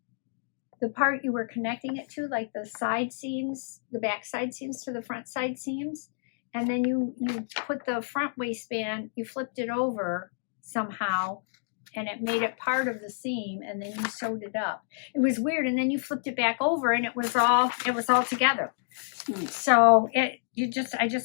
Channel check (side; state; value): right; silent; digital silence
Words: part you were connecting it to, like the side seams, the back side seams to the front side seams. And then you put the front waistband, you flipped it over somehow, and it made it part of the seam, and then you sewed it up. It was weird, and then you flipped it back over, and it was all together. So I